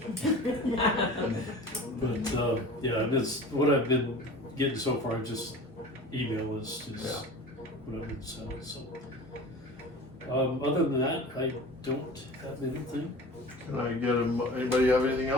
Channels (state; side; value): normal; both; correlation 0.38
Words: but, yeah, and it's, what I've been getting so far, just email is Yeah. what I've been selling, so. Other than that, I don't have anything. Can I get anybody have anything